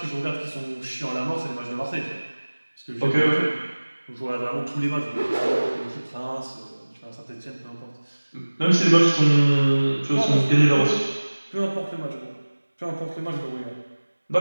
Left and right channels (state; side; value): inverted; both; correlation -1.00